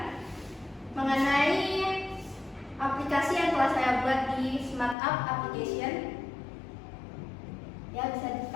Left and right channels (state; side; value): drops out; right; at 5.0 s